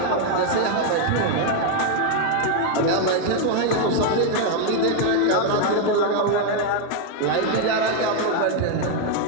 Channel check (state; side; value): different; both; correlation 0.00